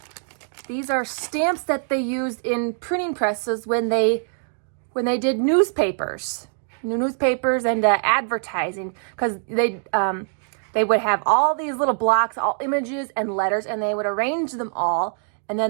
These are stamps that they used in printing presses when they did newspapers and advertising, because they would have all these little blocks, all images and letters, and they would arrange them all, and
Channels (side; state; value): left; silent; digital silence